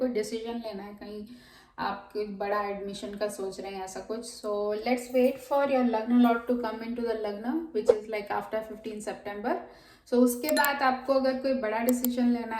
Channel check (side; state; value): both; identical; correlation 1.00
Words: डिसीजन लेना है, कहीं आप कोई बड़ा एडमिशन का सोच रहे हैं ऐसा कुछ, so let's wait for your लग्न lord to come in to the लग्न विच इज़ लाइक आफ्टर 15 सितंबर. सो उसके बाद आपको अगर कोई बड़ा डिसीजन लेना